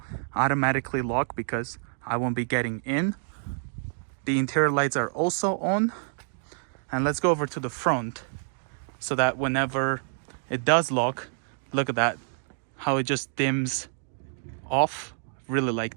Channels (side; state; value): left; silent; digital silence